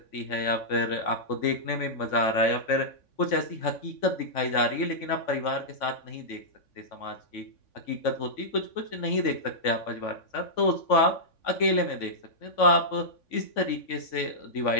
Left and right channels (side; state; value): right; late; 3.5 ms